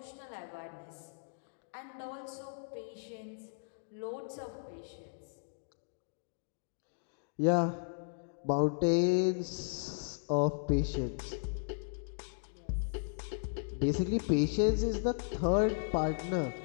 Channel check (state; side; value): silent; right; digital silence